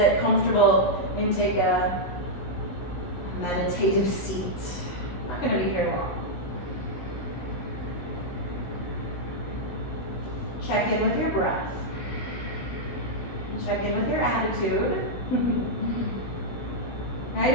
comfortable and take a meditative seat. I'm not going to be here long. Check in with your breath. Check in with your attitude. Right?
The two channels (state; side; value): late; right; 16 ms